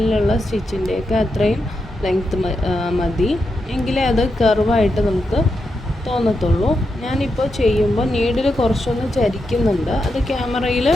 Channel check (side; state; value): both; normal; correlation 0.85